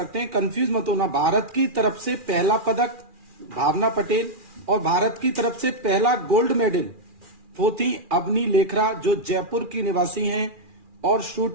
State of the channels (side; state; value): left; late; 2.4 ms